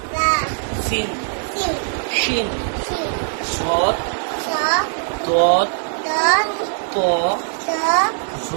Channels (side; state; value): left; silent; digital silence